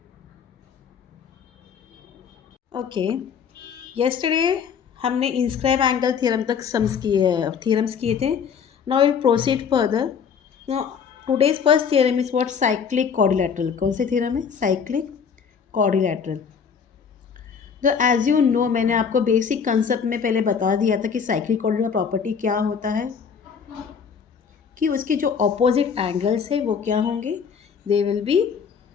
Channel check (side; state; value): right; quieter; 6.7 dB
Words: Okay, yesterday हमने inscribe angle theorem तक theorems किए थे. Now we'll proceed further. Now today's first theorem is what? Cyclic quadrilateral. कौन से theorem है? Cyclic quadrilateral. तो एज यू नो मैंने आपको बेसिक कंसेप्ट में पहले बता दिया था कि साइक्लिक quadrilateral प्रॉपर्टी क्या होता है, कि उसके जो ऑपोजिट एंगल्स है वो क्या होंगे, they will be